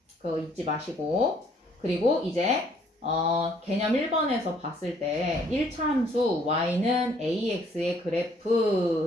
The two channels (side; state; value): both; normal; correlation 0.63